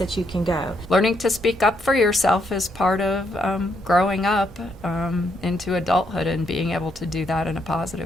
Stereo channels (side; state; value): both; normal; correlation 0.76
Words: you can go. Learning to speak up for yourself is part of growing up into adulthood, and being able to do that in a